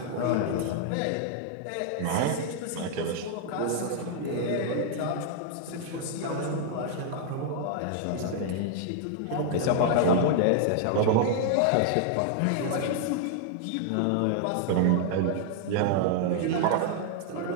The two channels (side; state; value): both; different; correlation 0.00